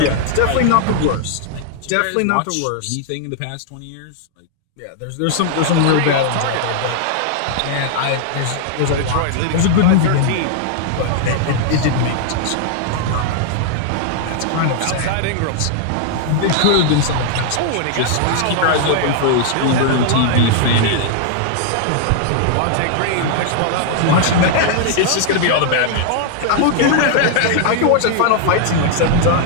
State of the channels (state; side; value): different; both; correlation 0.00